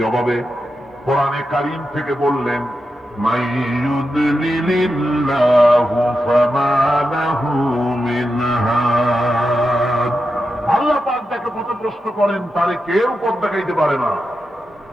কোরআনে কারীম থেকে বললেন, মাইয়ুদলিলিল্লাহু ফামা লাহু মিন হাদ। আল্লাহ পাক যাকে পথভ্রষ্ট করেন তারে কেউ পথ দেখাইতে পারে না।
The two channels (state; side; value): normal; both; correlation 0.88